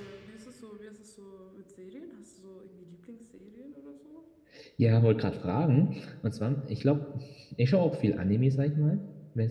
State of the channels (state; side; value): identical; both; correlation 1.00